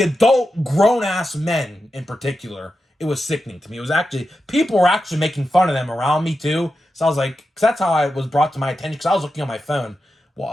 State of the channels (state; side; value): normal; both; correlation 0.90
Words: adult grown-ass men in particular, it was sickening to me. It was actually, people were actually making fun of them around me too. So I was like, because that's how I was brought to my attention, because I was looking on my phone,